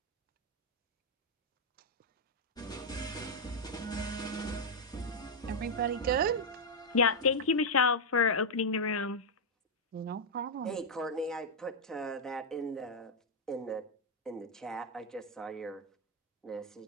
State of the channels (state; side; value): normal; both; correlation -0.02